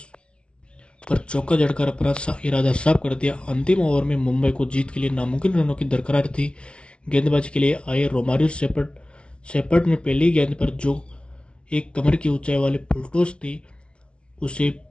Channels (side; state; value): right; late; 0.059 ms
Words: पर चौका जड़कर अपना इरादा साफ कर दिया। अंतिम ओवर में मुंबई को जीत के लिए नामुमकिन रनों की दरकार थी। गेंदबाजी के लिए आए रोमारियो शेपर्ड ने पहली गेंद पर जो एक कमर की ऊंचाई वाली फुल टॉस थी उसे